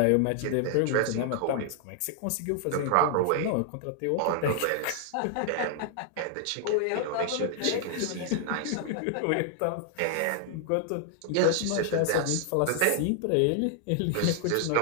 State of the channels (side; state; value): both; different; correlation 0.00